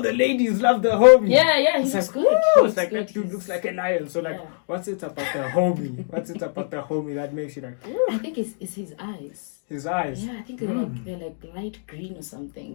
the ladies love the homie. Yeah, he It's looks like, good. woo, it's like that dude looks like a lion. So like, what's it about the homie? What's it about the homie that makes you like? Woo? I think it's his eyes. His eyes. Yeah, I think they're like light green or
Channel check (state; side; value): silent; right; digital silence